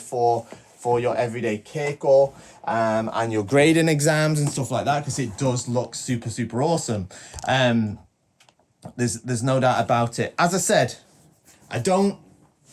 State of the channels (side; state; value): both; identical; correlation 1.00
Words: your everyday keiko and your grading exams and stuff like that, because it does look super, super awesome. There's no doubt about it. As I said, I don't